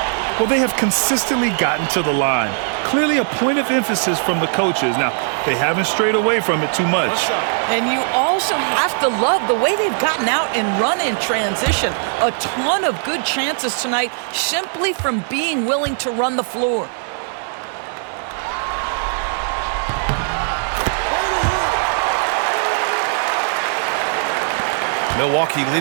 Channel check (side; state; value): left; silent; 66 dB below the other